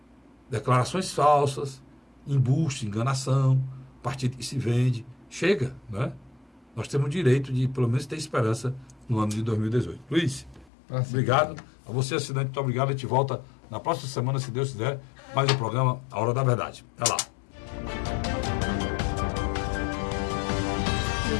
declarações falsas, embuste, enganação, partido que se vende. Chega, né? Nós temos o direito de, pelo menos, ter esperança no ano de 2018. Luiz, obrigado. A você, assinante, muito obrigado. A gente volta na próxima semana, se Deus quiser, mais um programa A Hora da Verdade. Até lá.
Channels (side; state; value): right; drops out; at 10.7 s